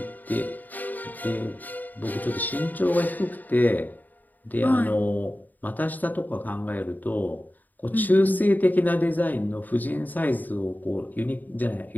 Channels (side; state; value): right; late; 0.085 ms